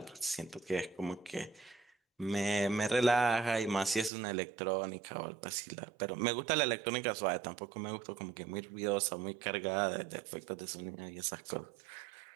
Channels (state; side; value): drops out; left; at 4.1 s